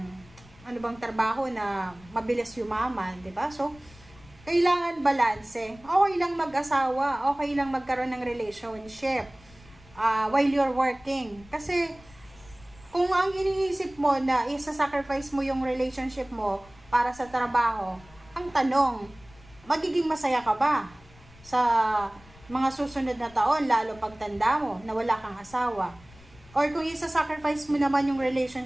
ano bang trabaho na mabilis yumaman. Diba? So, kailangan balanse. Okay lang mag-asawa. Okay lang magkaroon ng relationship while you're working. Kasi, kung ang iniisip mo na isa-sacrifice mo yung relationship mo para sa trabaho, ang tanong, magiging masaya ka ba sa mga susunod na taon, lalo pagtanda mo, na wala kang asawa? Or kung isa-sacrifice mo naman yung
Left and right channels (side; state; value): left; noise; rumble, 24 dB below the sound